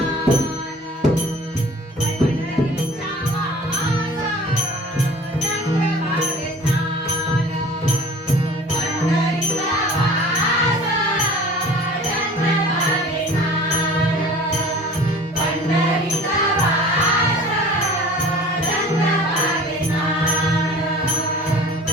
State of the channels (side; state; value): both; normal; correlation 0.45